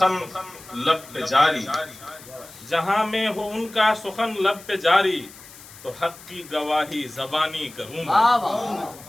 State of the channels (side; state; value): left; noise; hiss, 19 dB below the sound